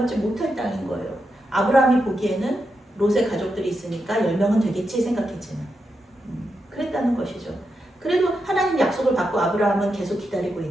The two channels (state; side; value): normal; both; correlation 0.86